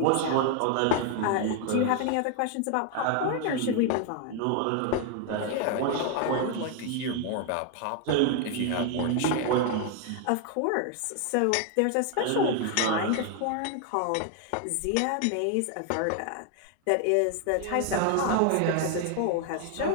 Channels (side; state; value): both; different; correlation 0.01